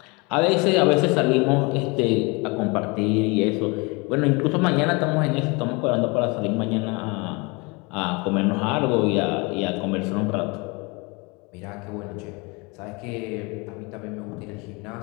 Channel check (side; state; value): right; quieter; 28.2 dB